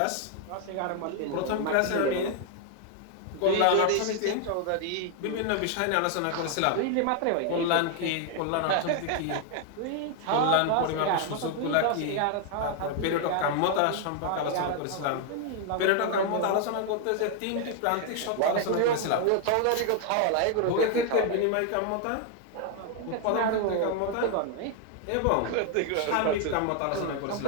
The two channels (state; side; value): different; both; correlation 0.00